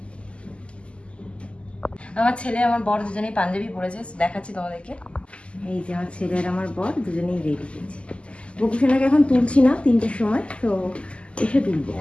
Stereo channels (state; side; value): late; right; 0.055 ms